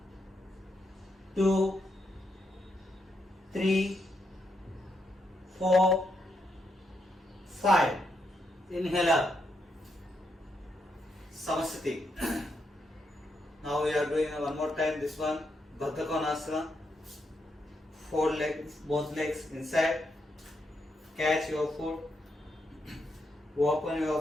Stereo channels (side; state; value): both; normal; correlation 0.80